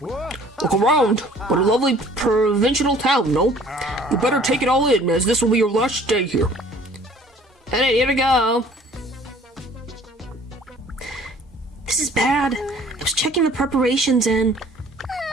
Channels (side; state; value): both; normal; correlation 0.53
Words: Look around. What a lovely provincial town, no? You better take it all in, as this will be your last day here. Alright, here we go. This is bad. I was checking the preparations and